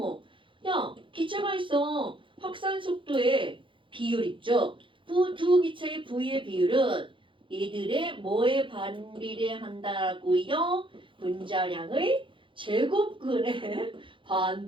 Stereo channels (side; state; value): left; late; 0.25 ms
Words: 야, 기체가 있어. 확산 속도의 비율 있죠. 두 기체의 V의 비율은 이들의 뭐에 반비례한다고요? 분자량의 제곱근에